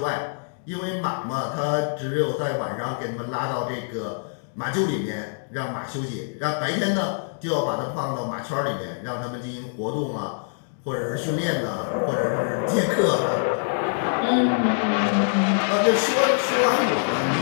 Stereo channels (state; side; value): silent; right; digital silence